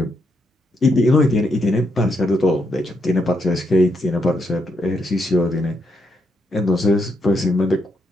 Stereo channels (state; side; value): normal; both; correlation 0.79